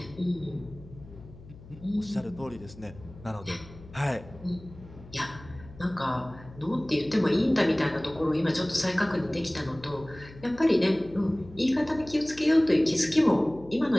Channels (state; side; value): noise; left; hum, 19 dB below the sound